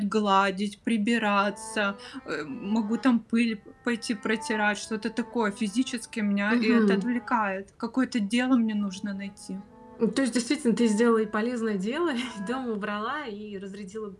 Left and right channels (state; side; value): identical; both; correlation 1.00